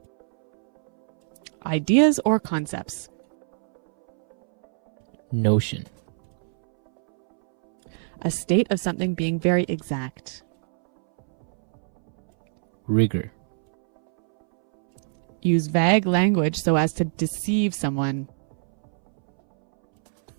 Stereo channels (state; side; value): silent; left; 63 dB below the other